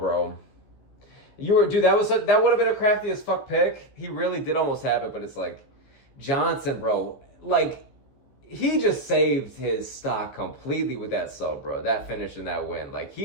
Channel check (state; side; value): late; right; 15 ms